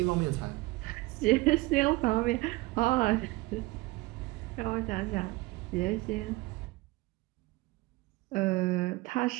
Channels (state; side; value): quieter; left; 21.3 dB